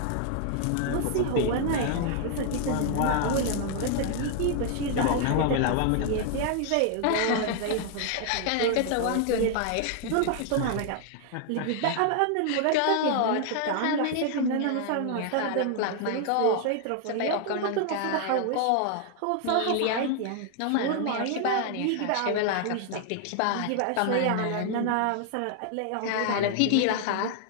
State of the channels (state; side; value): different; both; correlation 0.00